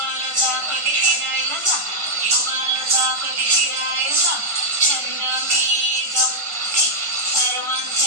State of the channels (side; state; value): left; late; 1.5 ms